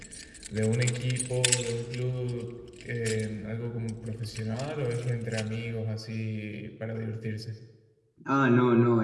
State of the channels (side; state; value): both; identical; correlation 1.00